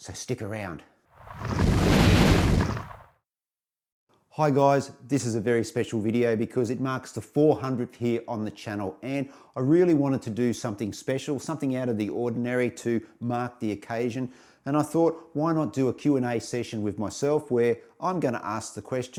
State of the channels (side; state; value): both; identical; correlation 1.00